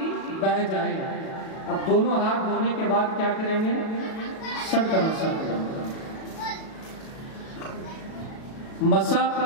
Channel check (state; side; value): late; right; 37 ms